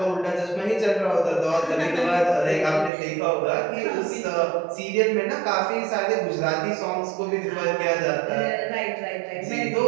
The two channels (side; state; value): left; drops out; at 2.9 s